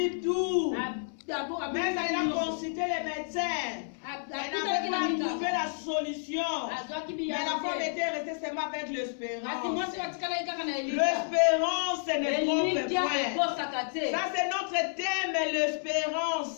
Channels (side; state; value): right; silent; 58 dB below the other